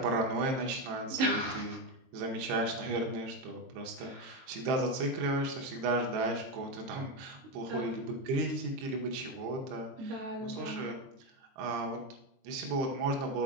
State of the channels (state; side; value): late; left; 22 ms